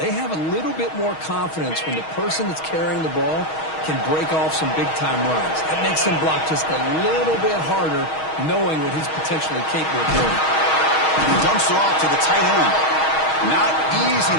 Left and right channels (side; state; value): right; late; 6.3 ms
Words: have a little bit more confidence when the person that's carrying the ball can break off some big-time runs. That makes him block just a little bit harder, knowing what he's potentially capable of doing. He dumps it off to the tight end. Not easy